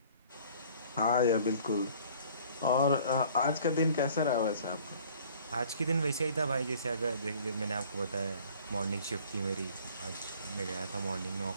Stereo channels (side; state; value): both; inverted; correlation -0.53